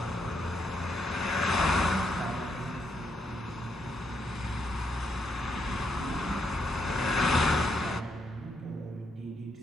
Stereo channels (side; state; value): both; normal; correlation 0.78